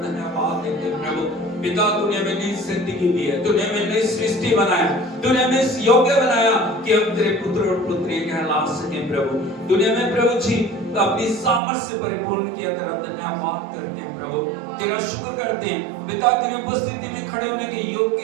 धन्यवाद देते हैं प्रभु। पिता, तूने हमें नई जिंदगी दी है, तूने हमें नई सृष्टि बनाया, तूने हमें इस योग्य बनाया कि हम तेरे पुत्र और पुत्री कहला सकें प्रभु। तूने हमें प्रभु जी अपनी सामर्थ से परिपूर्ण किया, तेरा धन्यवाद करते हैं प्रभु, तेरा शुक्र करते हैं पिता। तेरी उपस्थिति में खड़े होने के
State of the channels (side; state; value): left; drops out; at 11.6 s